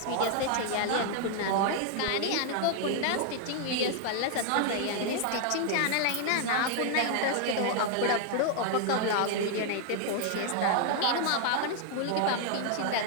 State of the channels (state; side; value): different; both; correlation 0.00